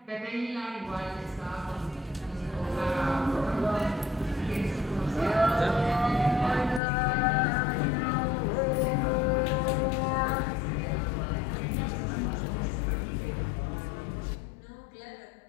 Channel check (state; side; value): drops out; right; at 6.8 s